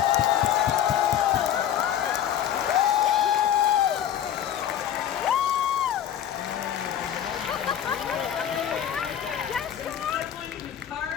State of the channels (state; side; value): quieter; right; 10.3 dB